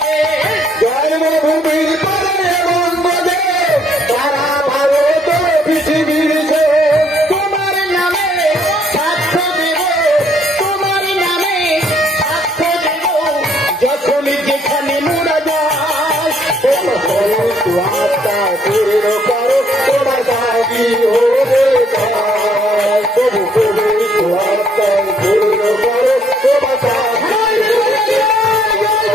জন্মভূমির পরে বঙ্গদেশ সারা ভারত পৃথিবীতে, তোমার নামে সাক্ষ্য দেব, তোমার নামে সাক্ষ্য দেব, যখন যেখানে মোরা যাই, আত্মা পূর্ণ করো তোমার দাবি হয়ে যায়, তবু পবিত্র আত্মা পূর্ণ করো তোমার দাবি,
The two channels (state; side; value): normal; both; correlation 0.66